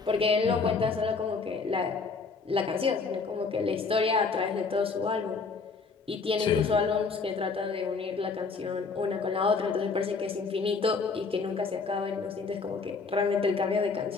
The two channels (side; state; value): right; quieter; 4.6 dB